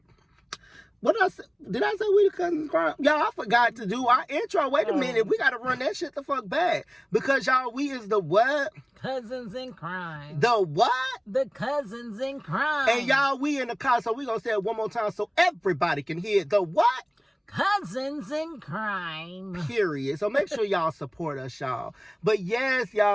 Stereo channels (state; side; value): identical; both; correlation 1.00